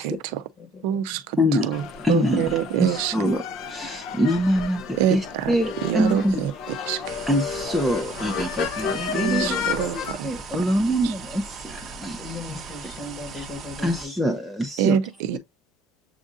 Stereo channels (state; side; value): normal; both; correlation 0.59